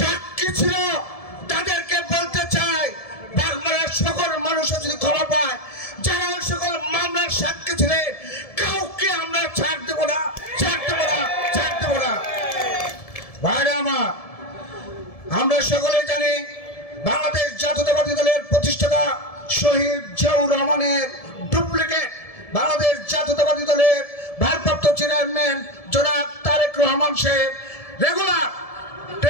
ছিল, তাদেরকে বলতে চাই বাগমারার সকল মানুষও যদি ক্ষমা পায়, যারা ওই সকল মামলার সাক্ষী ছিলেন কাউকে আমরা ছাড় দেবো না, ছাড় দেবো না, ছাড় দেবো না। ভাইরা আমার, আমরা সকলে জানি বাংলাদেশ জাতীয়তাবাদী দলের প্রতিষ্ঠাতা শহীদ জিয়াউর রহমানের ডুপ্লিকেট বাংলাদেশ জাতীয়তাবাদী দলের ভারপ্রাপ্ত চেয়ারম্যান জনাব তারেক রহমান সাহেব রেগুলার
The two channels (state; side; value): late; right; 1.7 ms